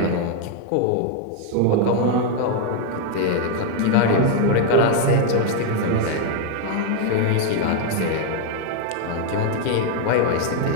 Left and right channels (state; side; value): different; both; correlation 0.00